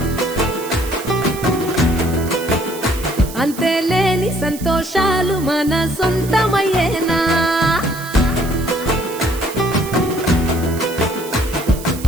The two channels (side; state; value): right; noise; hiss, 14 dB below the sound